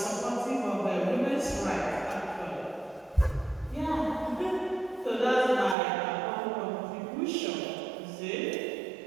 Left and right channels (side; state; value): left; drops out; at 5.8 s